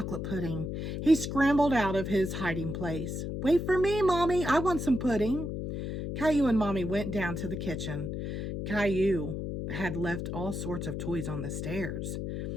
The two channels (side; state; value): left; noise; hum, 4 dB below the sound